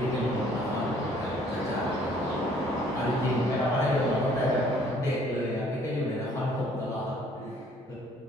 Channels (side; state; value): both; normal; correlation 0.59